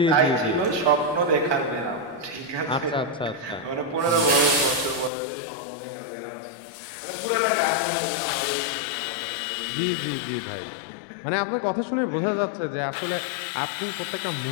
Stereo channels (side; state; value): right; drops out; at 5.1 s